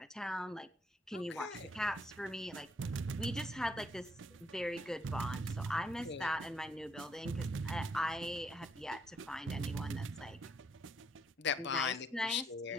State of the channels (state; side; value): normal; both; correlation 0.71